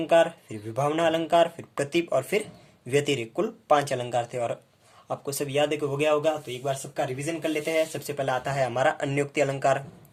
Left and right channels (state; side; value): identical; both; correlation 1.00